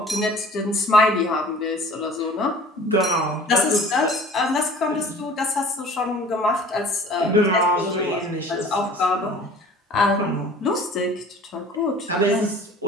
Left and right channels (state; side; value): normal; both; correlation 0.46